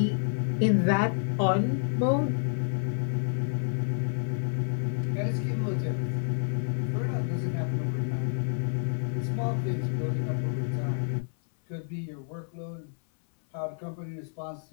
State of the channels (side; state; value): right; silent; 58 dB below the other